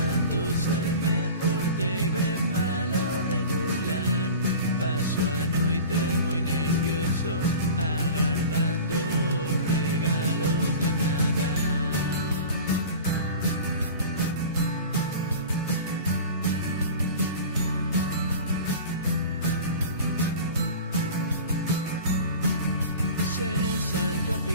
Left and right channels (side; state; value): both; inverted; correlation -0.37